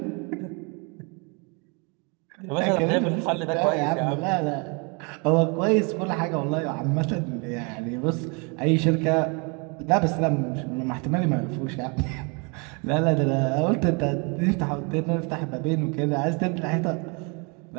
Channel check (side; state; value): left; quieter; 32.7 dB